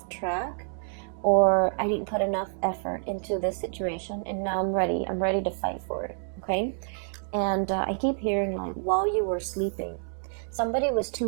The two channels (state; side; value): silent; left; digital silence